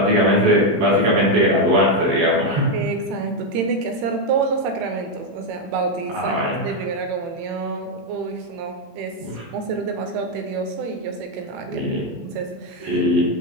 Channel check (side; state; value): left; late; 18 ms